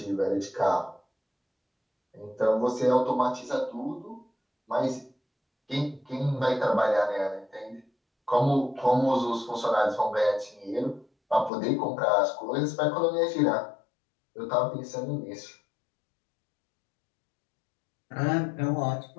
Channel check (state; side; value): drops out; right; at 11.5 s